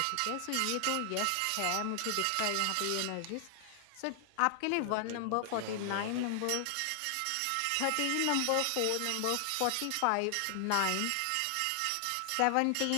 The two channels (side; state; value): both; different; correlation 0.00